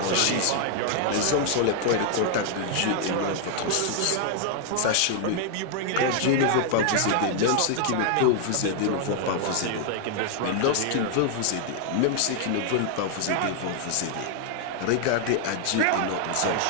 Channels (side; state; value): both; different; correlation 0.00